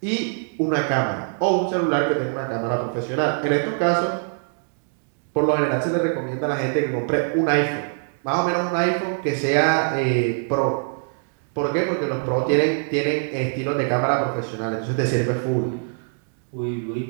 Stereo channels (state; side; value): silent; left; 63 dB below the other